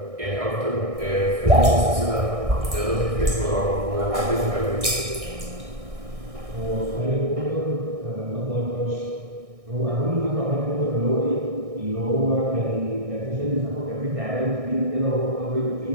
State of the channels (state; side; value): late; left; 1.6 ms